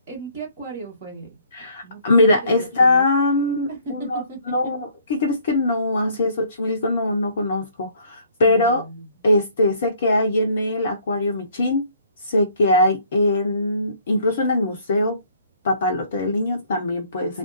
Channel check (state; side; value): inverted; both; correlation -0.60